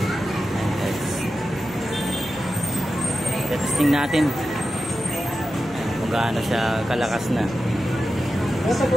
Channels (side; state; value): left; noise; hum, 20 dB below the sound